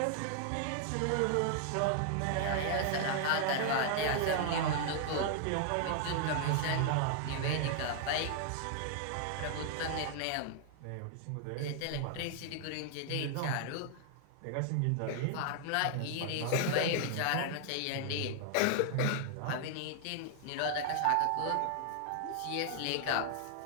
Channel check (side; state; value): both; different; correlation 0.00